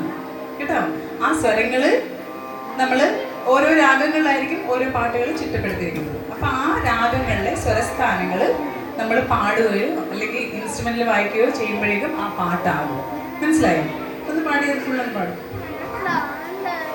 കേട്ടോ. ആ സ്വരങ്ങള് നമ്മള് ഓരോ രാഗങ്ങളിലായിരിക്കും ഓരോ പാട്ടുകൾ ചിട്ടപ്പെടുത്തിയിരിക്കുന്നത്. അപ്പൊ ആ രാഗങ്ങളിലെ സ്വരസ്ഥാനങ്ങൾ നമ്മൾ പാടുകയോ അല്ലെങ്കിൽ ഇൻസ്ട്രുമെന്റിൽ വായിക്കുകയോ ചെയ്യുമ്പോഴേക്കും ആ പാട്ടാകും. മനസ്സിലായോ? ഒന്ന് പാടിയത് ഫുള്ളൊന്ന് പാടും.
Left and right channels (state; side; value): identical; both; correlation 1.00